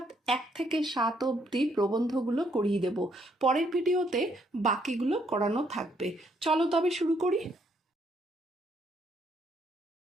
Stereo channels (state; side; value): normal; both; correlation 0.71